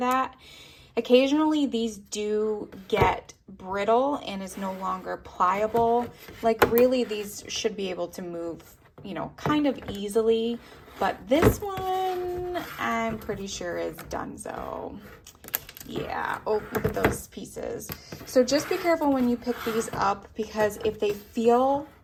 Occasionally, these do get brittle and is no longer pliable. Like really, these should be able to move, you know, kind of easily. But this one, I'm pretty sure is donezo. Yeah, oh, look at those pieces. So just be careful when you pick these up, because if they feel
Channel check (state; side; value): identical; both; correlation 1.00